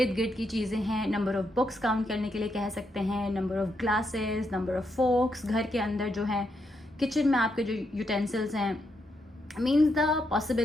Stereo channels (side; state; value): both; normal; correlation 0.80